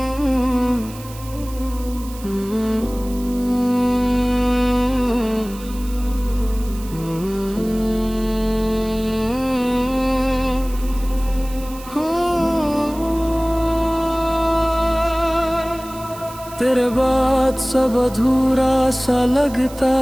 तेरे बाद सब अधूरा सा लगता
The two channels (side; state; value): right; noise; hiss, 18 dB below the sound